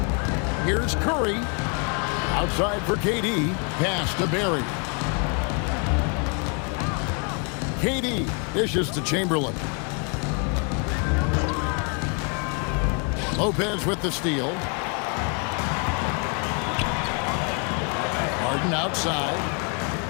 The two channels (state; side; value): quieter; right; 36.3 dB